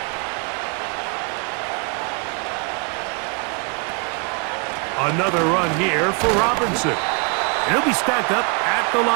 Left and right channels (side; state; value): left; quieter; 34.8 dB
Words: Another run here for Robinson. And he'll be stacked up at the